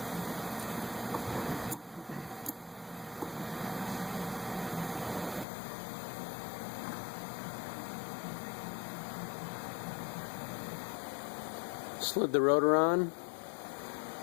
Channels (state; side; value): drops out; right; at 5.5 s